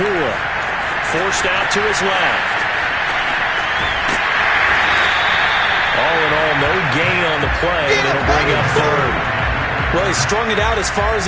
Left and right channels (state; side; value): identical; both; correlation 1.00